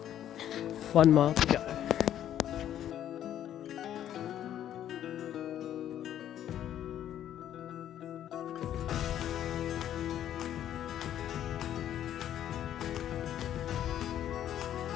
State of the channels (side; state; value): right; quieter; 11.0 dB